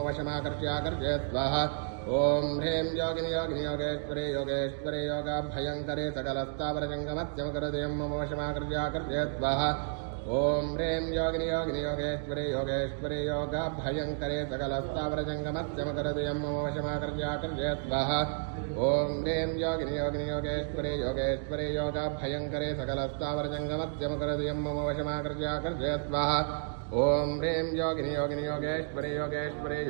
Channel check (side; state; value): left; silent; digital silence